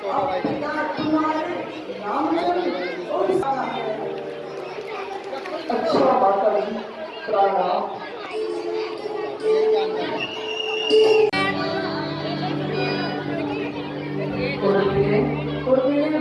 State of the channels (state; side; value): identical; both; correlation 1.00